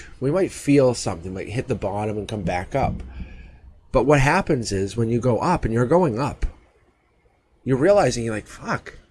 we might feel something, might hit the bottom and come back up. But what happens is when you go up, and you're going up, you're realizing, you're like, fuck,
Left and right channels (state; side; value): identical; both; correlation 1.00